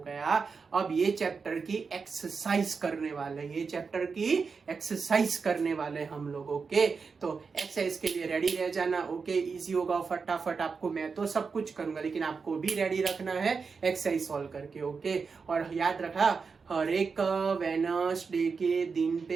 अब ये चैप्टर की एक्सरसाइज करने वाले हम लोग ओके तो एक्सरसाइज के लिए रेडी रह जाना ओके इजी होगा फटाफट आपको मैं तो सब कुछ करूंगा लेकिन आपको भी रेडी रखना है एक्सरसाइज सॉल्व करके ओके और याद रखा हर एक वेडनेसडे के दिन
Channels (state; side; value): quieter; left; 5.1 dB